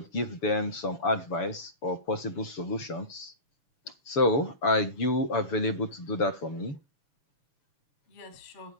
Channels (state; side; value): late; right; 6.9 ms